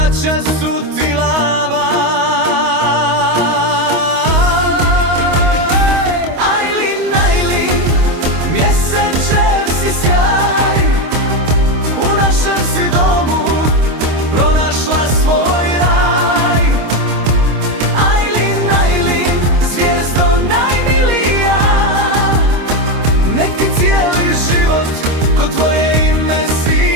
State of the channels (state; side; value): late; left; 25 ms